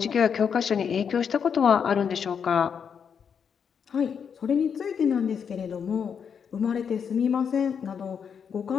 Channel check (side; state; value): right; quieter; 7.1 dB